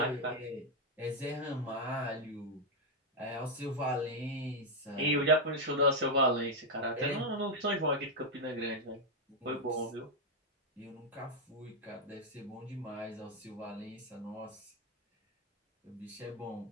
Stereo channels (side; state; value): both; normal; correlation 0.00